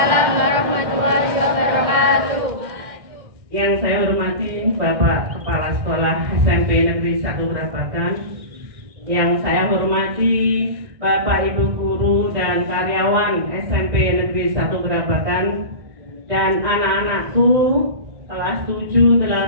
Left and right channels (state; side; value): late; left; 1.6 ms